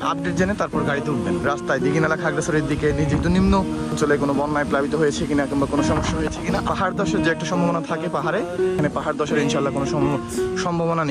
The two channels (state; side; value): identical; both; correlation 1.00